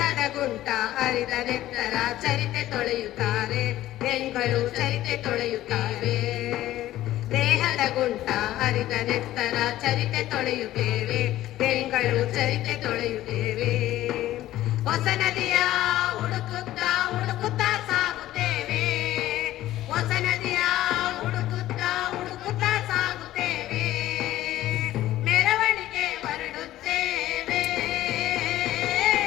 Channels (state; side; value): quieter; right; 14.5 dB